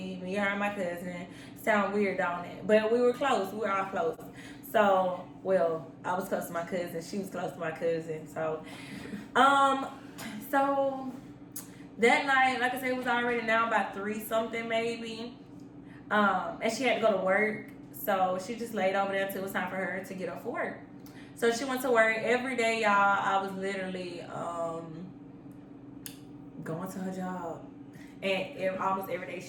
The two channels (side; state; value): both; identical; correlation 1.00